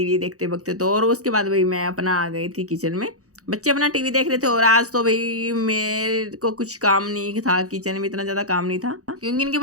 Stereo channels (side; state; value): left; late; 0.65 ms